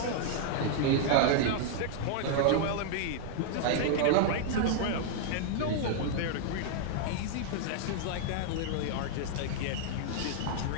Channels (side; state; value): both; different; correlation -0.01